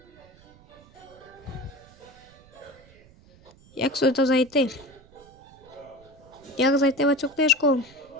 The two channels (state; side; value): noise; right; rumble, 25 dB below the sound